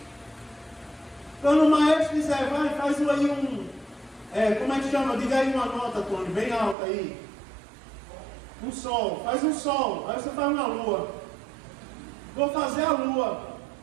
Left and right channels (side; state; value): left; drops out; at 6.8 s